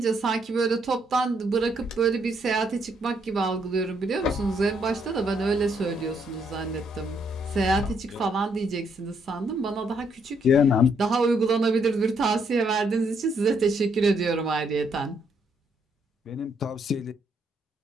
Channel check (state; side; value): normal; both; correlation 0.73